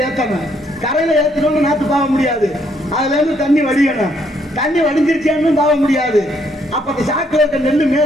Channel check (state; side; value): normal; both; correlation 0.70